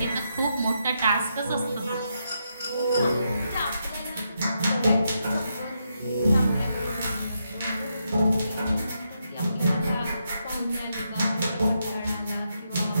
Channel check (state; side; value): inverted; both; correlation -0.82